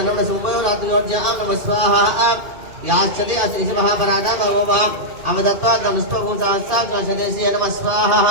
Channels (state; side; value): late; left; 2.5 ms